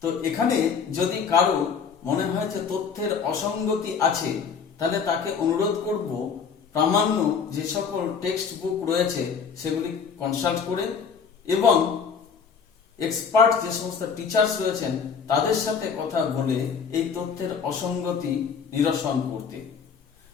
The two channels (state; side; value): quieter; right; 6.2 dB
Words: তো এখানে যদি কারো মনে হয় যে তথ্যের অসঙ্গতি আছে, তাহলে তাকে অনুরোধ করব প্রামাণ্য যে সকল টেক্সট বুক রয়েছে সেগুলি কনসাল্ট করে এবং এক্সপার্ট যে সমস্ত টিচার্স রয়েছেন তাদের সাথে কথা বলে এই তথ্যের অসঙ্গতি নিরসন করতে।